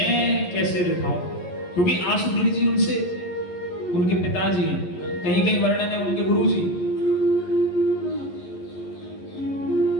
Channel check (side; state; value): right; late; 11 ms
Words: कैसे दिखाऊं, क्योंकि आशुधीर जी उनसे उनके पिताजी हैं, कहीं कहीं वर्णन है उनके गुरु जी।